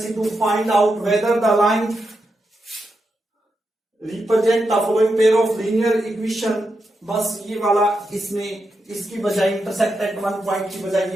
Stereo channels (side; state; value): both; normal; correlation 0.86